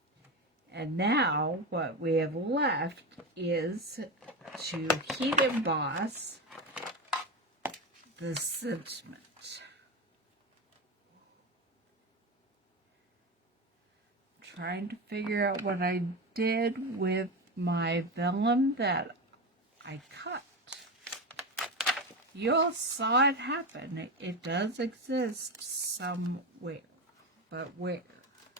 And now what we have left is to heat emboss the sentiment. Trying to figure out what I did with my vellum that I cut. you all saw it happen. It does exist somewhere. But where?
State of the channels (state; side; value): normal; both; correlation 0.18